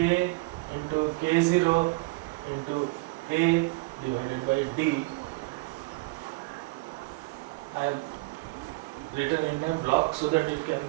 into K0 into A divided by D. I have written in a block so that it can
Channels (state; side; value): quieter; left; 25.8 dB